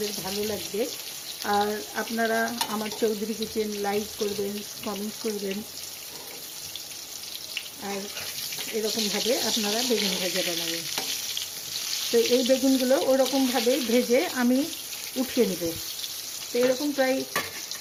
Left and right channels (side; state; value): both; identical; correlation 1.00